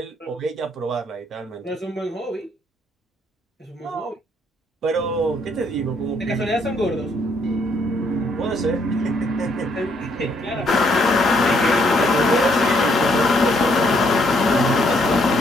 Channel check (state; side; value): normal; both; correlation 0.70